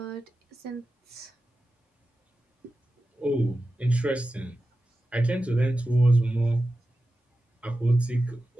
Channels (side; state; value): both; normal; correlation 0.93